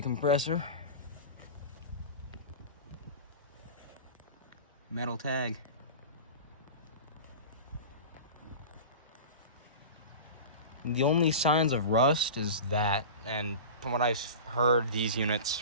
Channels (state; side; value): inverted; both; correlation -0.32